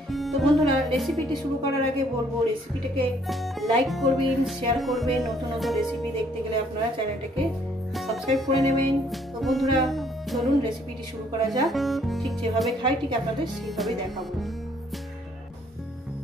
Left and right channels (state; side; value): normal; both; correlation 0.64